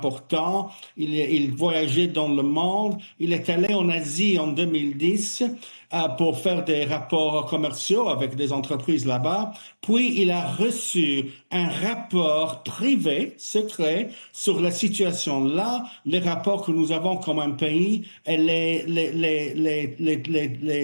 Il voyageait dans le monde. Il est allé en Asie en 2010 pour faire des rapports commerciaux avec des entreprises là-bas. Puis, il a reçu un rapport privé, secret, sur la situation là, les rapports que nous avons comme un pays et les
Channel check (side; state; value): both; inverted; correlation -1.00